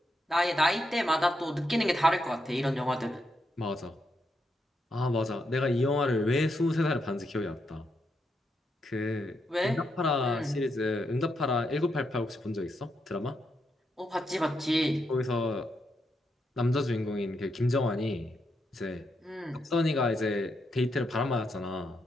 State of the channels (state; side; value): normal; both; correlation 0.81